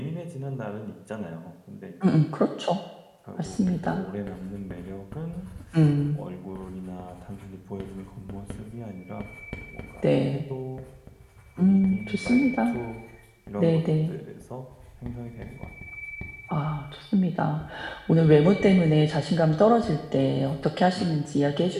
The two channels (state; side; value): identical; both; correlation 1.00